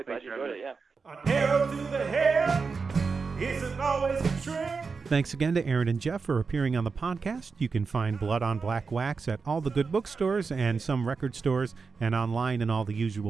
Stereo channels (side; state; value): left; quieter; 4.9 dB